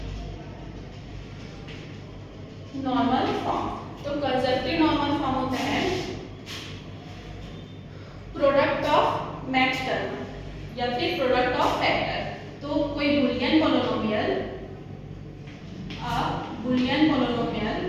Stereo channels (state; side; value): identical; both; correlation 1.00